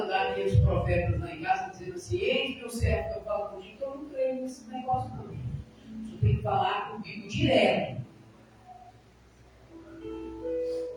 aqueles profetas lá em casa dizendo assim, eis meu servo que eu falo contigo, que eu não creio nesse negócio não. O Senhor tem que falar comigo direto.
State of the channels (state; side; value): identical; both; correlation 1.00